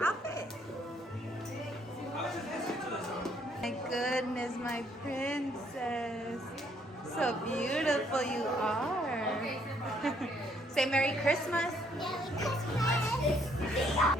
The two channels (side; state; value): both; normal; correlation 0.67